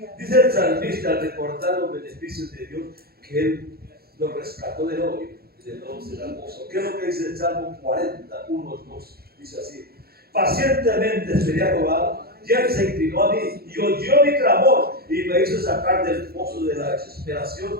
Dice el salmista al recordar los beneficios de Dios que Él lo rescató del hoyo y del lodo será gozo. ¿Qué es lo que dice el Salmo 41, 2? Dice así: pacientemente esperé a Jehová, y Él se inclinó a mí y oyó mi clamor y me hizo sacar del pozo de la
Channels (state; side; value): late; left; 0.45 ms